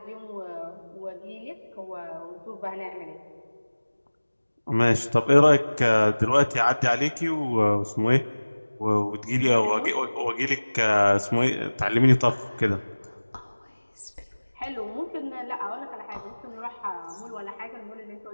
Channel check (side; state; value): both; inverted; correlation -1.00